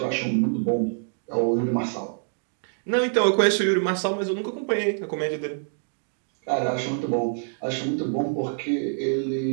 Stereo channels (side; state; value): left; silent; digital silence